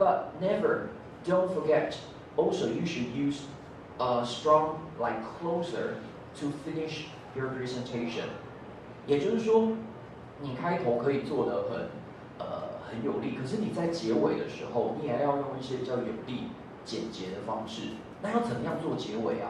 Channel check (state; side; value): identical; both; correlation 1.00